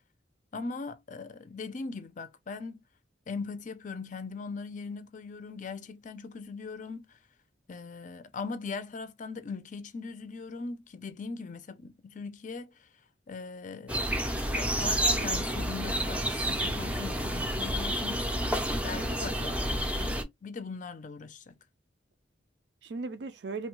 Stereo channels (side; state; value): both; normal; correlation 0.42